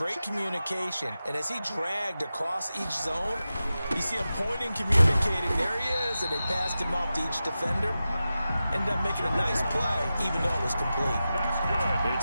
communication, and as he dragged across each zone, you see him pointing, communicating. There he is, and they passed him off to each defender. Ended up making a nice play, even though it was complete. That's good.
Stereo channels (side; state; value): both; inverted; correlation -0.93